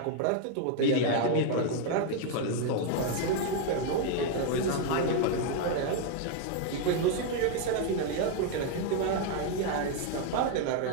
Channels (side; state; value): both; different; correlation 0.00